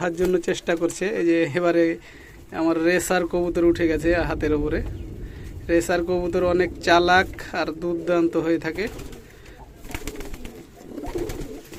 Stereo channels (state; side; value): identical; both; correlation 1.00